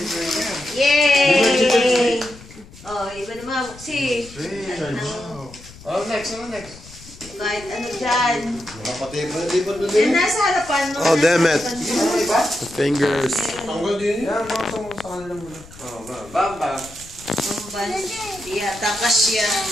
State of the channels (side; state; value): left; noise; rumble, 19 dB below the sound